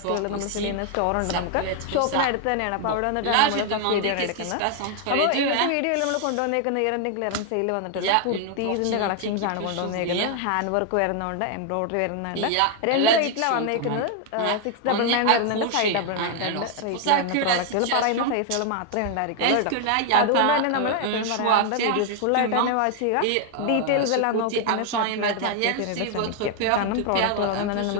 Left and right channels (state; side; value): different; both; correlation 0.00